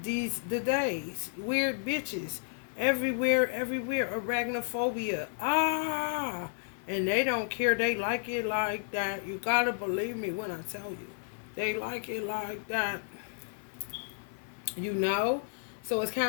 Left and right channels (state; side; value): silent; right; 56 dB below the other